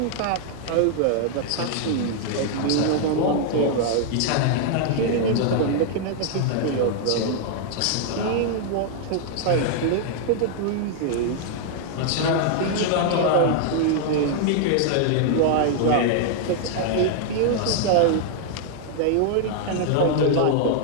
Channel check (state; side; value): different; both; correlation -0.01